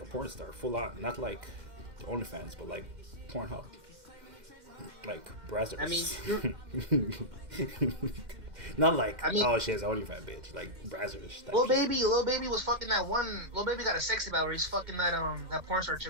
a porn star, full on. Not like OnlyFans, but like Pornhub. Like Brazzers. I mean, not like, oh, she has an OnlyFans bitch. Like Brazzers. Lil Baby was fucking that one. Lil Baby got a sexy about where he's fucking that porn star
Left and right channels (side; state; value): left; late; 2.1 ms